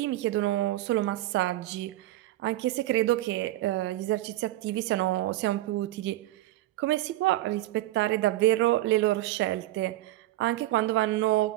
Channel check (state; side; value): quieter; left; 15.9 dB